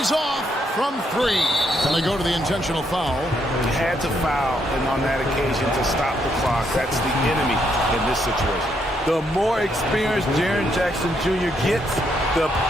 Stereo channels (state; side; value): normal; both; correlation 0.75